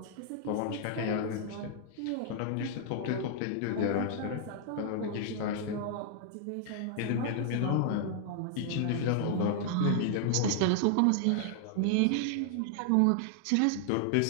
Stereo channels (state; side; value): different; both; correlation 0.00